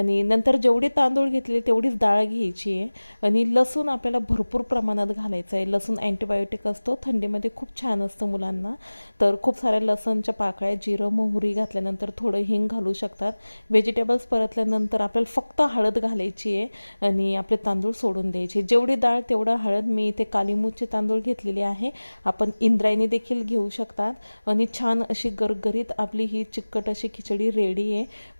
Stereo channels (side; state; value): both; inverted; correlation -1.00